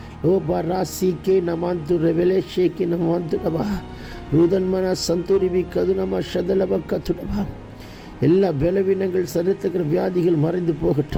ஓபா ராசிக்கே நமாந்து ரெவலேஷேக்கே நமாந்துடபா ரூதன்மன சந்தூரிபி கதுனமா ஷதலப கத்துடபா. எல்லா பலவீனங்கள், சரித்திர வியாதிகள் மறைந்து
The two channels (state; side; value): identical; both; correlation 1.00